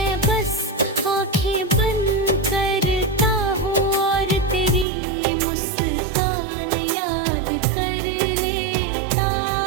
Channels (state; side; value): drops out; left; at 4.9 s